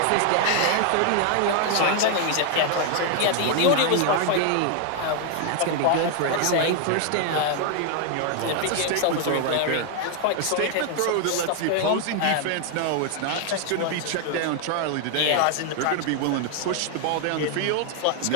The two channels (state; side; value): different; both; correlation 0.00